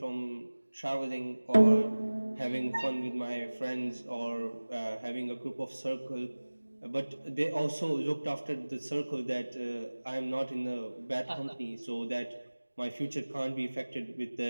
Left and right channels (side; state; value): both; inverted; correlation -1.00